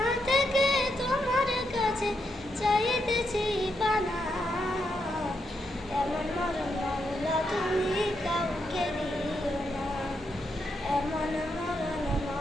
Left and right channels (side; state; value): both; normal; correlation 0.81